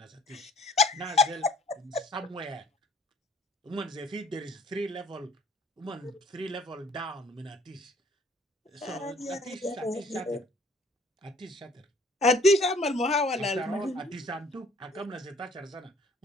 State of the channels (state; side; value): normal; both; correlation 0.57